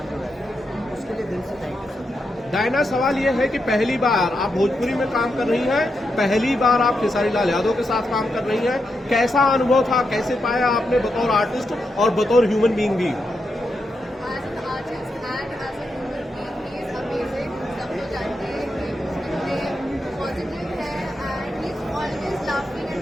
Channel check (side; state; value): both; normal; correlation 0.85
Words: जो है, उसके लिए दिल से थैंक यू सर। डायना, सवाल ये है कि पहली बार आप भोजपुरी में काम कर रही हैं, पहली बार आप खेसारी लाल यादव के साथ काम कर रही हैं, कैसा अनुभव था, कैसे पाया आपने बतौर आर्टिस्ट और बतौर ह्यूमन बीइंग भी?